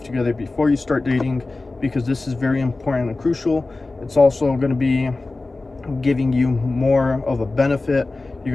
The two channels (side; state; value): right; quieter; 3.3 dB